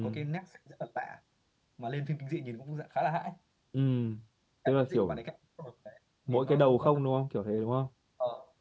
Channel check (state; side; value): identical; both; correlation 1.00